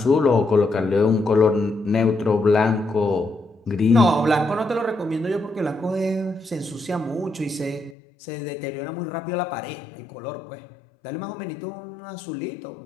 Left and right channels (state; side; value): drops out; right; at 8.0 s